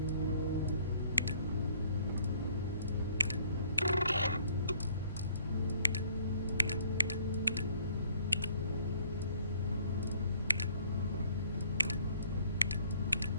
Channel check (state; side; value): inverted; both; correlation -0.59